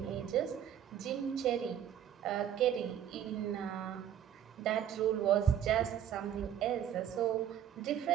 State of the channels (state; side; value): quieter; left; 9.9 dB